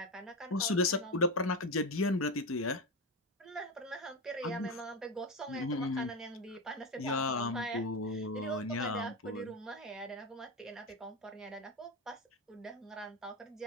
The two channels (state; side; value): normal; both; correlation 0.15